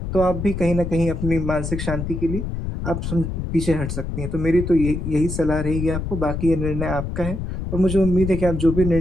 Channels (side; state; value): left; noise; rumble, 4 dB below the sound